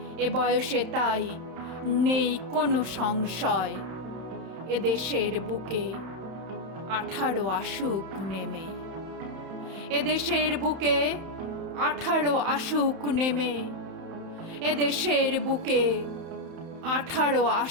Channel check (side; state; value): left; late; 31 ms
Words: এ বয়সে তাই নেই কোনো সংশয়, এ দেশের বুকে 18 আসুক নেমে। এ দেশের বুকে 18 আসুক নেমে, এ দেশের বুকে 18